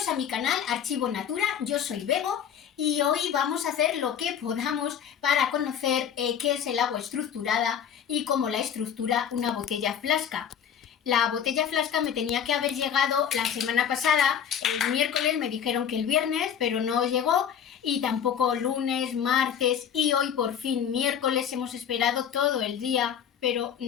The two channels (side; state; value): right; quieter; 8.5 dB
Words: mi canal Archivo Natura, yo soy Bego y hoy vamos a hacer lo que podamos para conocer qué es el agua estructurada y cómo la estructura una botella flasca. La botella flasca me tenía que haber llegado la semana pasada, el miércoles, me dijeron que el viernes, pero no llegó, y tampoco lunes, martes, y hoy por fin miércoles hemos esperado todo el día, pero